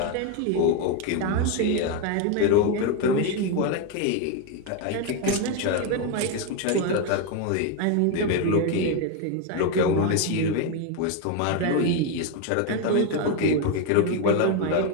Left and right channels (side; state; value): both; different; correlation 0.02